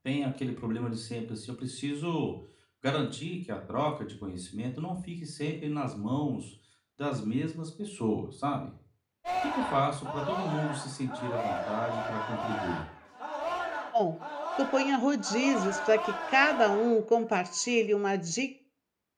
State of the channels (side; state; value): both; identical; correlation 1.00